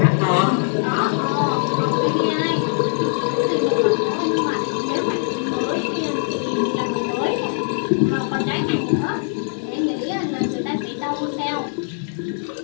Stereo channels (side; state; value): right; silent; digital silence